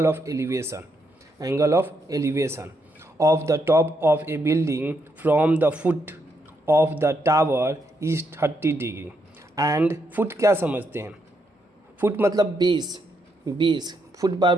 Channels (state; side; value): normal; both; correlation 0.78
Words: of elevation. Angle of elevation of the top of A building from the foot of the tower is 30 degree. And foot क्या समझते हैं? फुट मतलब बेस फुट बार